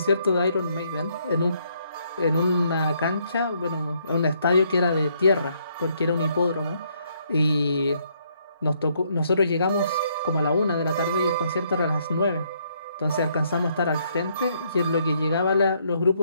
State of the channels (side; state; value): both; inverted; correlation -0.71